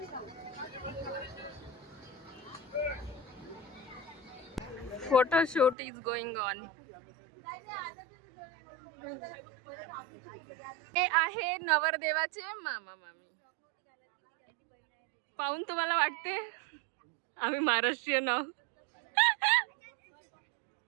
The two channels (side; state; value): left; drops out; at 5.8 s